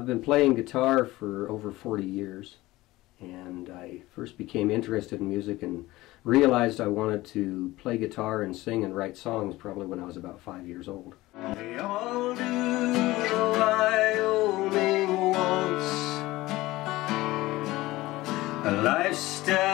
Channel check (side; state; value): right; quieter; 18.5 dB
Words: been playing guitar for over 40 years, and I first became interested in music and realized I wanted to play guitar and sing and write songs probably when I was about 5 years old. We all do the Wyoming waltz, a